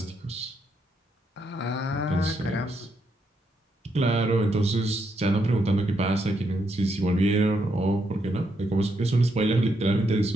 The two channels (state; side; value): normal; both; correlation 0.78